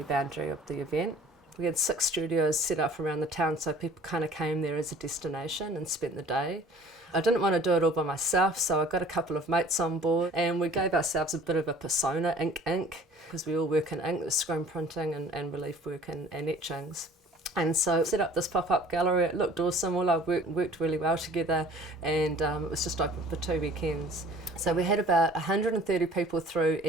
boundary of the event. We had 6 studios set up around the town, so people kind of came there as a destination and spent the day. I didn't want to do it all by myself, so I got a couple of mates on board and we gave ourselves a bit of a persona, ink, because we all work in ink, the screen printing and relief work and etchings. And so set up this pop-up gallery. It looked awesome, all our work worked really well together, and it was just open for 2 weekends. So we had about 130 people through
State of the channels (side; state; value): both; normal; correlation 0.49